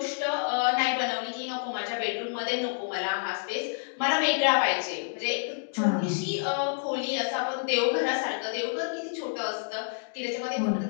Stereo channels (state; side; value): silent; right; digital silence